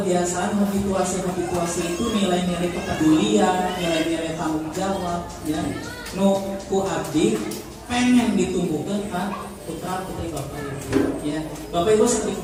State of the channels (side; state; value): both; identical; correlation 1.00